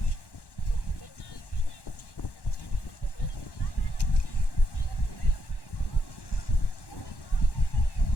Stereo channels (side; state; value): right; late; 1.1 ms